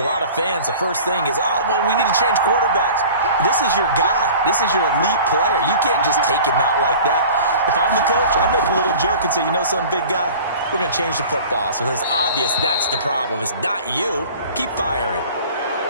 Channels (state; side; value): inverted; both; correlation -0.42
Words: lot of fans, the first thing is, oh, well, we need to change quarterbacks. This is your guy. This is your elite player. You can't just take him out like that. If I'm the coach, I make a little joke and say, you know something, big guy? We're going to change the football. So it's obvious that's the problem. It's not you. Keep firing.